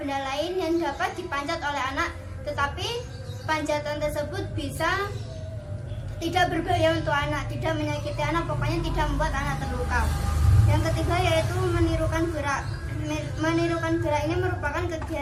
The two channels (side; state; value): both; identical; correlation 1.00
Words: lain yang dapat dipanjat oleh anak, tetapi panjatan tersebut bisa tidak berbahaya untuk anak, tidak menyakiti anak, pokoknya tidak membuat anak terluka. Yang ketiga yaitu menirukan gerak. Menirukan gerak ini merupakan